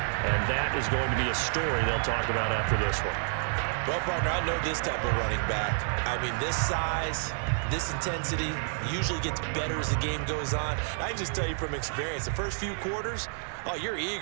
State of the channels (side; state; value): left; silent; 58 dB below the other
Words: and that is going to be a story they'll talk about after this one. Well, partner, I know this type of running back. I mean, this size, this intensity usually gets better as the game goes on. I can just tell you from experience, the first few quarters, oh, you're